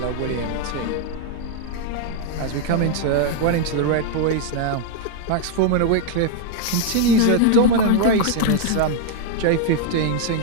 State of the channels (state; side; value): different; both; correlation 0.00